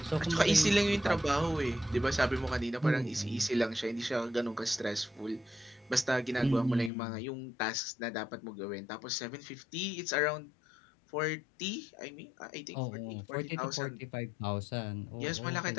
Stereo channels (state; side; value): drops out; right; at 6.9 s